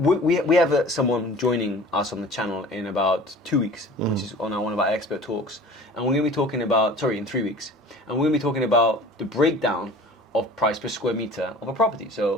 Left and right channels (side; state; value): both; normal; correlation 0.43